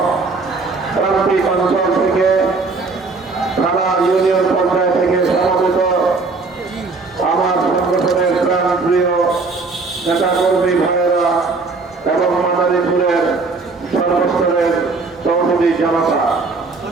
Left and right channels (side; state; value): left; quieter; 4.0 dB